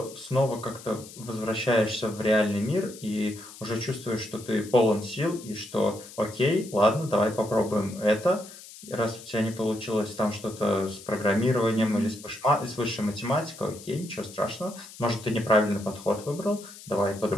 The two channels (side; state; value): left; noise; hiss, 17 dB below the sound